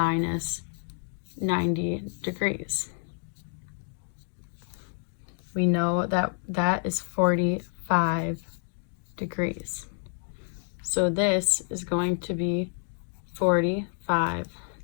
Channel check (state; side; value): silent; right; 59 dB below the other